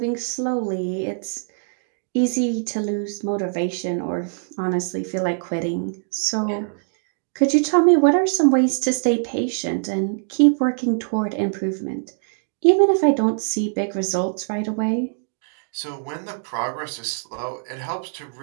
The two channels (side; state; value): left; silent; digital silence